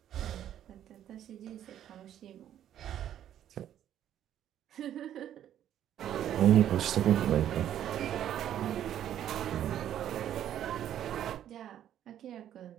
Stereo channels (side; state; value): left; quieter; 10.9 dB